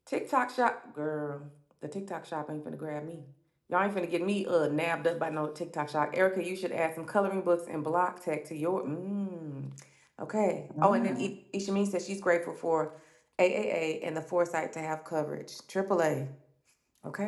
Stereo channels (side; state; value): both; identical; correlation 1.00